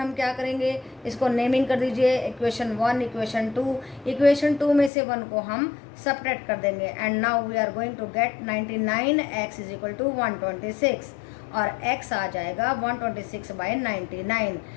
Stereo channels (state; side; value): drops out; right; at 4.9 s